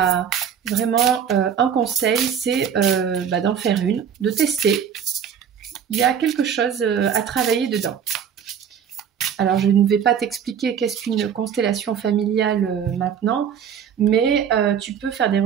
vraiment un conseil, c'est d'en faire une, de tester. Il y a quelque chose à travailler dedans. Alors, je ne vais pas t'expliquer qu'est-ce qu'une constellation familiale maintenant, mais tu peux faire des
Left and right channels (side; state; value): left; quieter; 8.0 dB